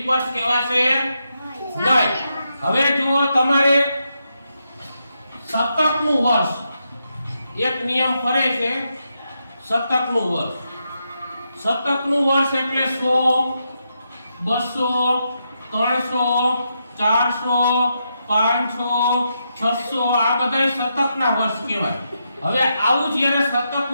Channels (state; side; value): inverted; both; correlation -0.83